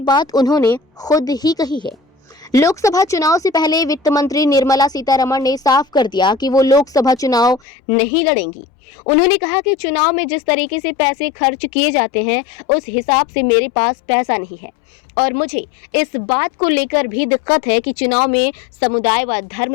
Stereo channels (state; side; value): drops out; right; at 7.6 s